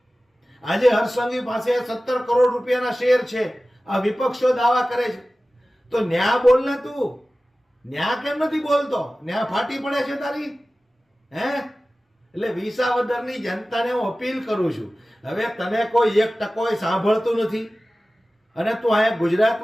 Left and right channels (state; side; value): normal; both; correlation 0.96